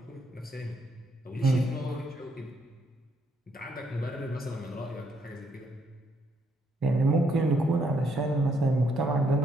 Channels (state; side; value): normal; both; correlation 0.72